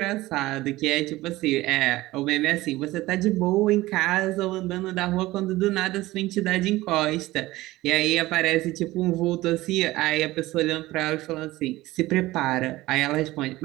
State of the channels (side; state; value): left; quieter; 18.1 dB